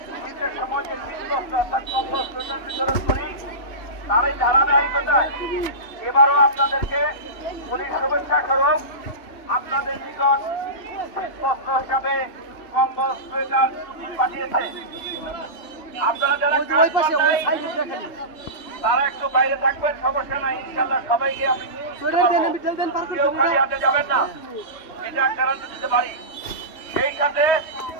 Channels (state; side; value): late; right; 2.7 ms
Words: শীতের সময় যে বিতরণ করি, তারই ধারাবাহিকতায় এবারও আপনাদেরকে পুলিশ শুভেচ্ছা স্বরূপ আপনাদের নিকট শীতবস্ত্র হিসাবে কম্বল সোয়েটার পাঠিয়েছে। আপনারা যারা কাজ পান নাই তারা একটু বাইরে থাকবেন, সমস্যা নাই, ইনশাল্লাহ সবাইকে আমি কেউ খালি হাতে যাবেন না, এটা গ্যারান্টি দিতে পারি। সেই সাথে